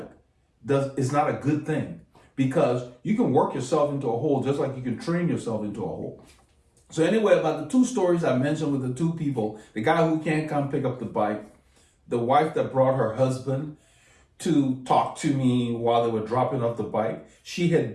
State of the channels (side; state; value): both; identical; correlation 1.00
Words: is not a good thing because you can work yourself into a hole just like you can train yourself into a hole. So anyway, about the two stories I mentioned with the two people, the guy who can't come pick up the bike, the wife that brought her husband to talk to me while they were dropping off the bike. She